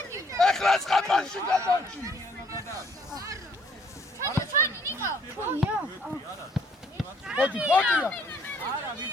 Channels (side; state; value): both; normal; correlation 0.63